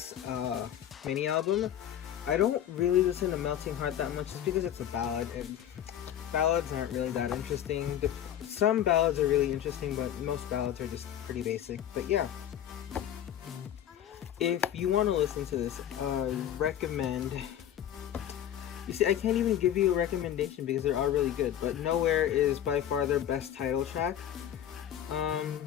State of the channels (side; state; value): right; quieter; 10.6 dB